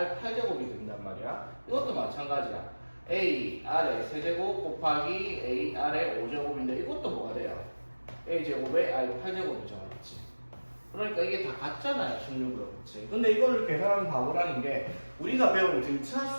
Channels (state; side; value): inverted; both; correlation -1.00